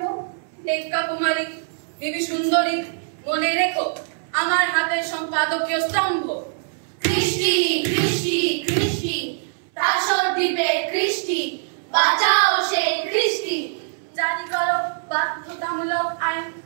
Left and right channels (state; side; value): silent; left; 64 dB below the other